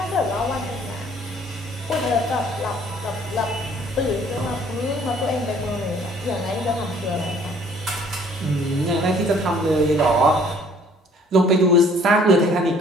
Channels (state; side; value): normal; both; correlation 0.58